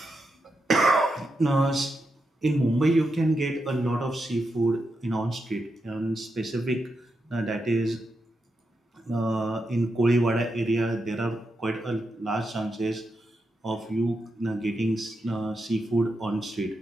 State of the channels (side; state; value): both; normal; correlation 0.86